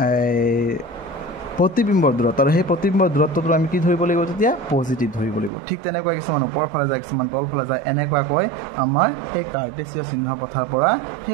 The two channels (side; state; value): left; drops out; at 5.5 s